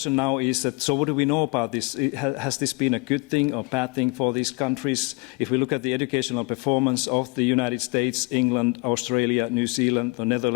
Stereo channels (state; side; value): quieter; right; 28.3 dB